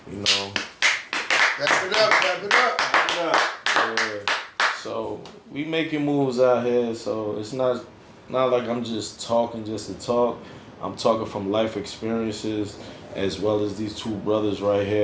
you know. Wrap it up, wrap it up. Yeah. So we making moves out here, so it's not like I'm just talking just to talk. I'm talking from life experiences, as well as these two brothers right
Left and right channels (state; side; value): identical; both; correlation 1.00